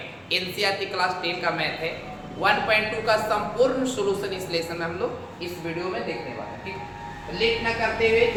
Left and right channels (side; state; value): both; identical; correlation 1.00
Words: एनसीईआरटी क्लास 10 का मैथ है। 1.2 का संपूर्ण सॉल्यूशन इस लेसन में हम लोग इस वीडियो में देखने वाले हैं। ठीक, तो लेट न करते हुए